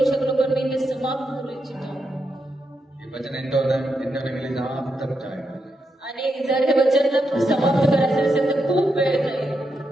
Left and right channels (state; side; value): normal; both; correlation 0.83